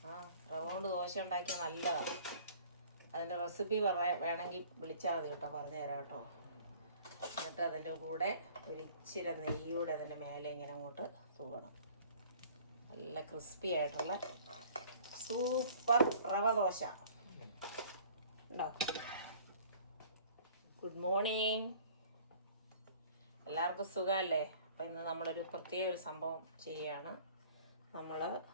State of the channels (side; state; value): both; inverted; correlation -0.51